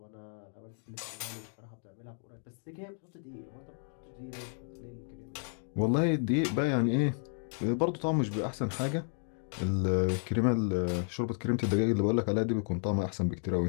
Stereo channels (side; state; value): right; silent; 56 dB below the other